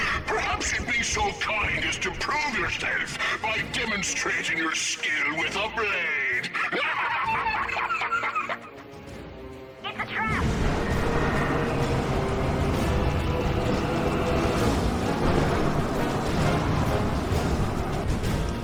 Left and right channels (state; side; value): identical; both; correlation 1.00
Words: Perhaps you'd be so kind as to prove yourself by demonstrating your skill with a blade. It's a trap!